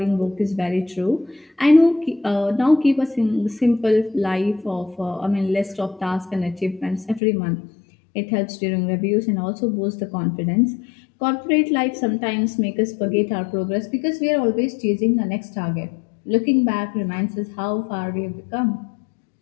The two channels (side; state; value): right; drops out; at 7.2 s